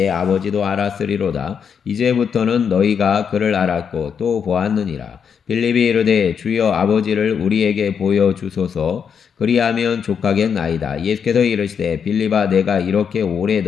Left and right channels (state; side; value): quieter; right; 7.1 dB